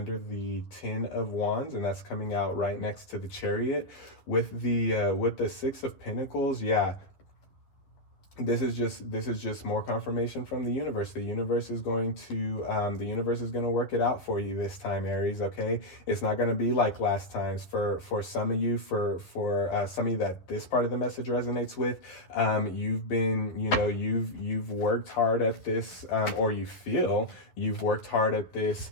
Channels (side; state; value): right; late; 11 ms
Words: Ten of Wands, and that's coming out right next to the Chariot. With the Six of Pentacles, yeah, this is just more confirmation from the universe. The universe is going to work it out for you this time, Aries. Okay, it's not going to be like last times. For some of you, for some of you that this part of the message resonates with, you've been, you've worked hard at this, or you feel you've worked hard at this